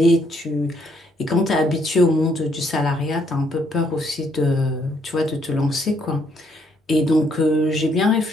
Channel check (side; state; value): both; normal; correlation 0.70